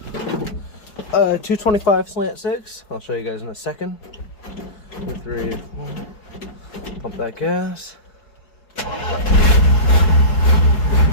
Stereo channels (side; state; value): right; late; 4.8 ms